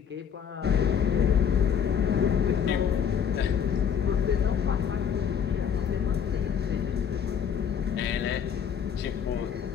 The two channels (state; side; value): quieter; right; 7.7 dB